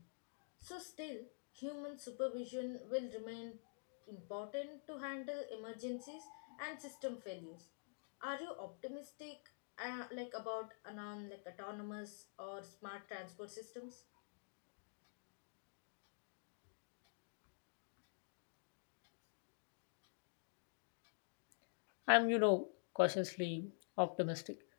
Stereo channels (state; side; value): silent; right; digital silence